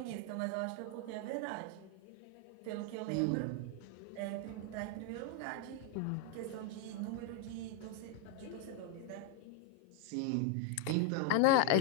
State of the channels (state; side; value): different; both; correlation 0.01